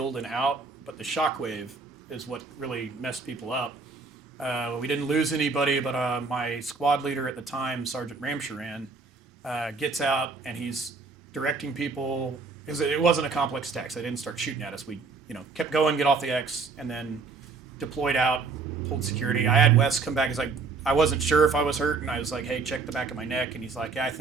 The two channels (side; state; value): left; quieter; 4.4 dB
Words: and out, but the shockwave is what really messed people up. We didn't lose anybody, but my squad leader at the time, Sergeant Ramsharan, gets out and he's directing people. It wasn't a complex attack, so they didn't start shooting at us. We, kept going, get off the X, and then deployed out, pulled security. I had Wes come back. He's like, I wasn't sure if I was hurt, and I was like, hey, check the back of my neck. And he's like, yeah, I